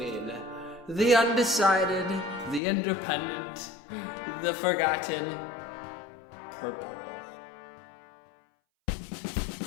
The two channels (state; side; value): drops out; right; at 2.6 s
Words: The undecided, the independent, the forgotten, purple.